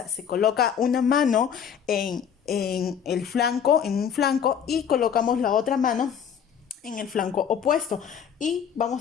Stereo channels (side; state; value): right; quieter; 7.9 dB